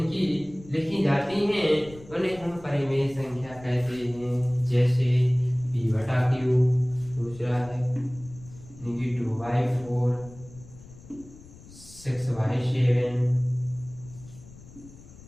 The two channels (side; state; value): left; noise; rumble, 20 dB below the sound